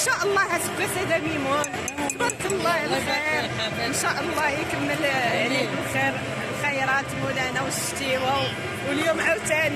الله اسباس هذا ميمون. تبارك الله على الخير. ان شاء الله يكمل عليك الخير الخيرات مولانا والشتيوه. واليوم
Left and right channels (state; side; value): identical; both; correlation 1.00